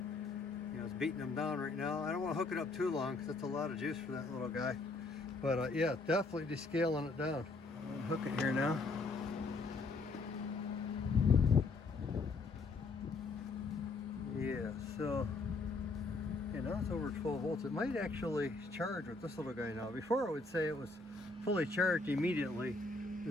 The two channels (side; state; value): right; quieter; 3.6 dB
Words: You know, it's beating them down right now. I don't want to hook it up too long because that's a lot of juice for that little guy. But yeah, definitely descaling it down. I'm gonna hook it here now. Yeah, so yeah, now it's over 12 volts. It might actually charge with this little guy now. Before it would say it was fully charged immediately